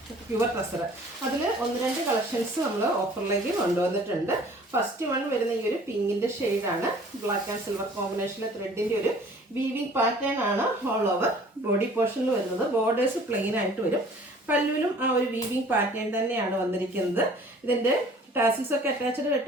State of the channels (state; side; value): normal; both; correlation 0.51